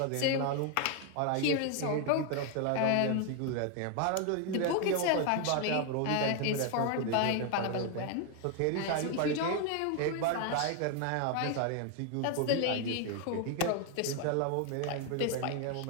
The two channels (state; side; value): different; both; correlation 0.01